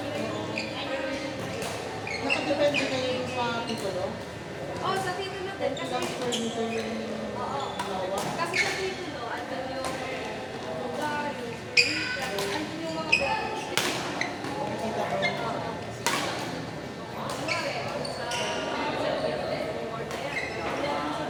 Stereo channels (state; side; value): identical; both; correlation 1.00